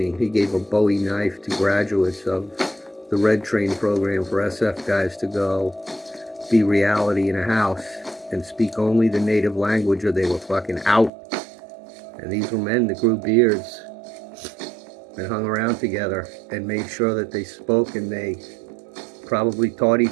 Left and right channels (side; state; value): left; drops out; at 11.1 s